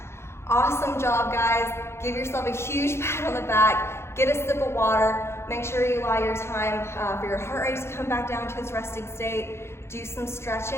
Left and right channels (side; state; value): right; late; 0.12 ms